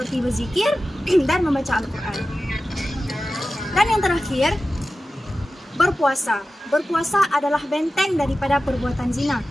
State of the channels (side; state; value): both; normal; correlation 0.94